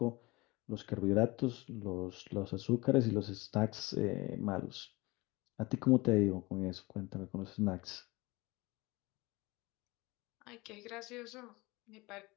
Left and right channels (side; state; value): right; quieter; 22.8 dB